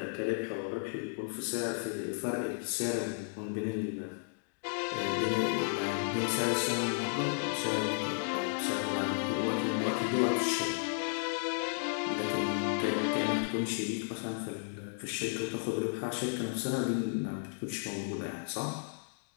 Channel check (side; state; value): right; silent; digital silence